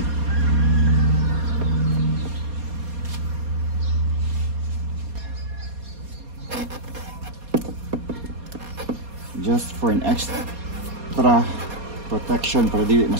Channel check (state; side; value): late; left; 4.2 ms